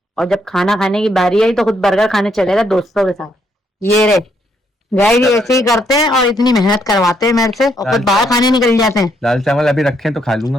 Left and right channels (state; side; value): normal; both; correlation 0.74